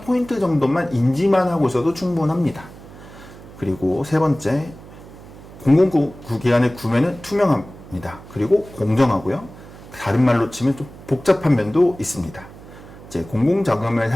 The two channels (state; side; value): noise; right; hum, 18 dB below the sound